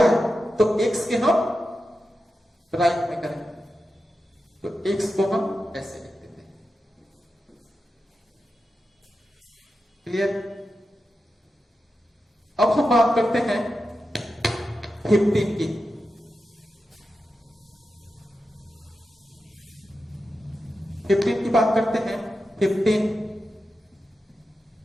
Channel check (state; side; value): normal; both; correlation 0.91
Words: है तो x के हम राइट में करें, तो x को हम ऐसे लिख देते हैं। क्लियर? अब हम बात करते हैं 15 की। 15 की बात करते हैं। 15